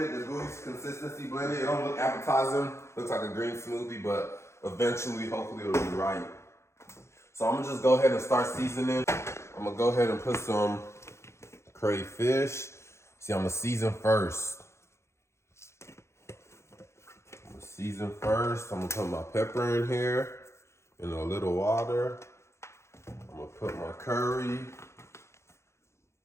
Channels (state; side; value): late; right; 0.13 ms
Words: the gooey consistency blended. It don't look appetizing, looks like a green smoothie, but eventually, hopefully it'll be right. So I'm gonna just go ahead and start seasoning. I'm gonna go ahead and put some crayfish. See, I'm gonna season first. I'm gonna put my pepper in here in a little water. I'm gonna put my curry.